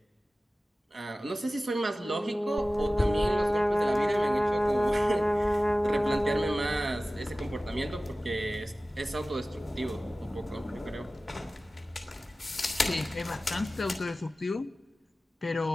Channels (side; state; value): both; normal; correlation 0.96